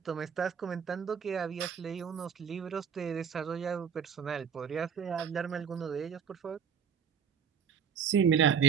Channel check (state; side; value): quieter; left; 7.2 dB